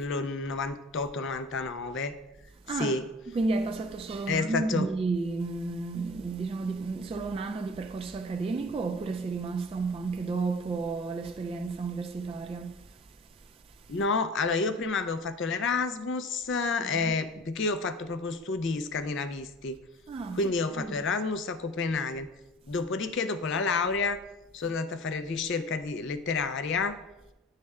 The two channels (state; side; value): normal; both; correlation 0.41